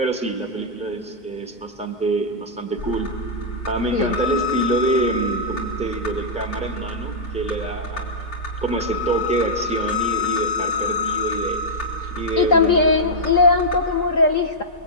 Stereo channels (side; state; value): right; late; 2.2 ms